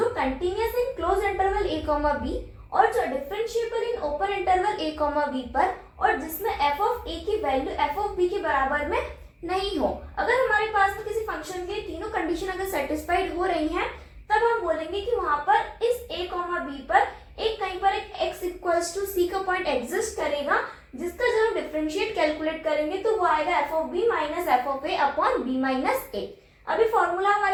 continuous in closed interval a comma B और जो differentiable in open interval a comma B पर और जिसमें एफ ऑफ ए की वैल्यू एफ ऑफ बी के बराबर में नहीं हो। अगर हमारे पास में किसी फंक्शन के तीनों कंडीशन अगर सेटिस्फाइड हो रही हैं तब हम बोलेंगे कि वहां पर इस a कॉमा बी पर एक कहीं पर एक x इक्वल्स टू सी का पॉइंट एग्जिस्ट करेगा जिसका जब हम डिफरेंशिएट कैलकुलेट करेंगे तो वो आएगा F of B minus F of A upon B minus A. अभी फॉर्मूला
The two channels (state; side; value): identical; both; correlation 1.00